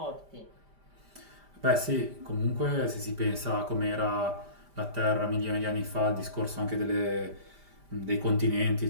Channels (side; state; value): left; late; 5.0 ms